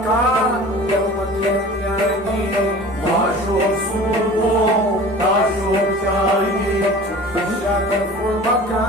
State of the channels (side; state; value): both; normal; correlation 0.41